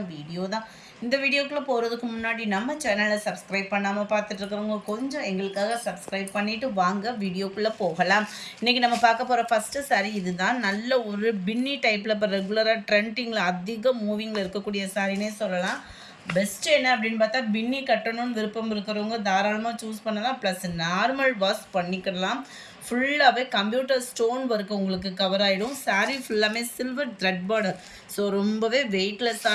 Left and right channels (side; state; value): both; identical; correlation 1.00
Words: வீடியோ தான். இந்த வீடியோக்குள்ளே போகிறதுக்கு முன்னாடி நம்ம சேனலை சப்ஸ்கிரைப் பண்ணாமல் பார்த்துட்ருக்கிறவங்க கொஞ்சம் எங்களுக்காக சப்ஸ்கிரைப் பண்ணிவிட்டு வாங்க வீடியோக்குள்ளே போகலாம். இன்றைக்கி நம்ம பார்க்க போகிற ஃபஸ்ட்டு சாரீ இது தான். நல்ல ஒரு பின்னி டைப்பில் இப்போ ரெகுலராக ட்ரெண்டிங்கில் அதிக மூவிங்கில் இருக்கக்கூடிய சாரினே சொல்லலாம். பெஸ்ட்டு என்ன அப்படின்னு பார்த்தா, பின்னி கட்டணும்னு விருப்பம் இருக்கிறவங்க தாராளமாக சூஸ் பண்ணலாம். ப்ளஸ் நார்மல் வாஷ் பண்ணிக்கலாம். ஃபுல்லாகவே கம்ப்யூட்டர் ஸ்டோன் ஒர்க் உங்களுக்கு கவர் ஆகிடும். சாரீ ஃபுல்லாமே சில்வர் த்ரெட் பார்டர். ஸோ ரொம்பவே